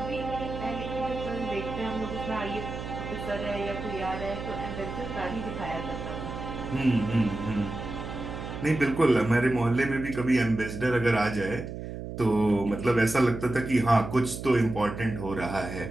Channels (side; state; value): right; noise; hum, 8 dB below the sound